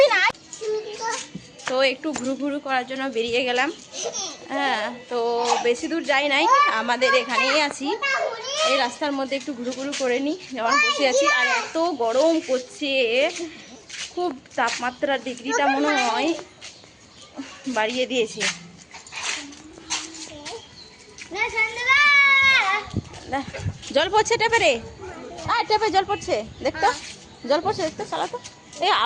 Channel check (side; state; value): both; identical; correlation 1.00